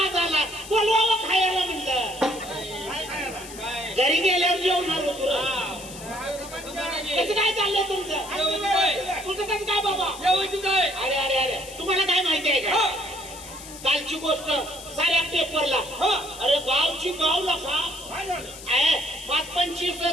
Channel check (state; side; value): noise; left; hiss, 14 dB below the sound